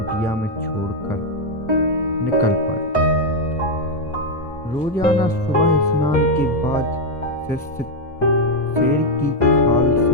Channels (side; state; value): both; normal; correlation 0.02